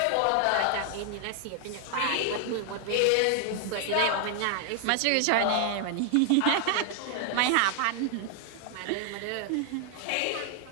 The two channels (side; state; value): both; different; correlation 0.00